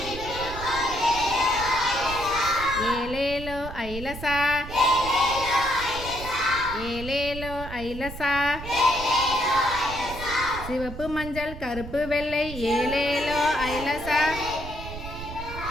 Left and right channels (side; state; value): right; noise; rumble, 10 dB below the sound